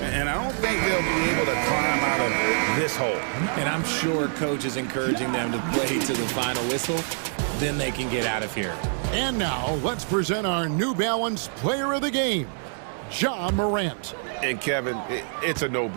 I don't think they'll be able to climb out of this hole. And I'm sure coach is encouraging them to play to the final whistle. Then they can get out of here. And now, let's present our New Balance Player of the Game, Ja Morant. And Kevin, it's a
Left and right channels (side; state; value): left; silent; 61 dB below the other